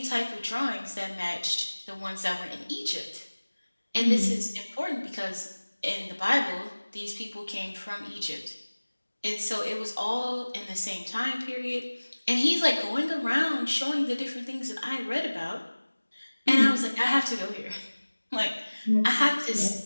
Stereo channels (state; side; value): inverted; both; correlation -1.00